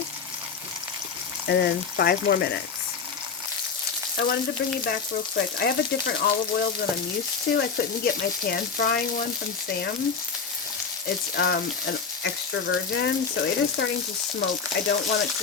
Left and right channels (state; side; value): quieter; right; 5.6 dB